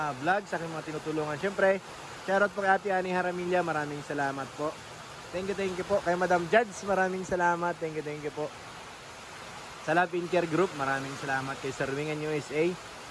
vlog, sa aking mga tinutulungan. Siyempre, shoutout po kay Ate Ani Haramilla, maraming salamat po. Thank you po. Kay Madam Judge, maraming salamat. Thank you po. Sa Love in Care Group, maraming salamat. Kay Sir Wingan USA,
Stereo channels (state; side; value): identical; both; correlation 1.00